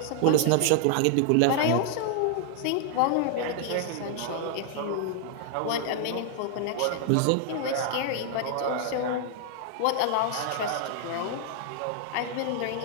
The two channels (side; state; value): both; different; correlation 0.00